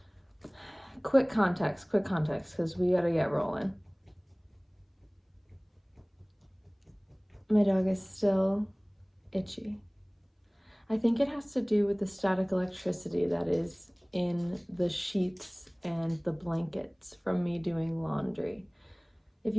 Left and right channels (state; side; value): identical; both; correlation 1.00